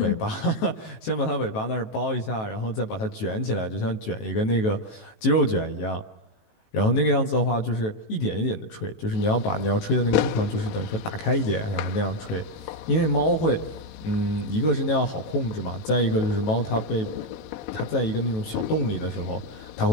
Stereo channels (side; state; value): right; late; 18 ms